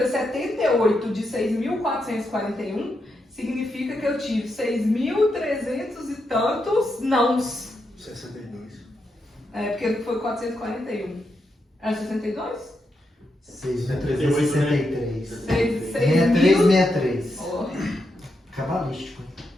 78 de 6.441, significa que eu tive 6.300 e tantos nãos. 62. Porque foi 441. Era 62? 6.363. 6363. Oh. Cabalístico.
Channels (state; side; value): normal; both; correlation 0.84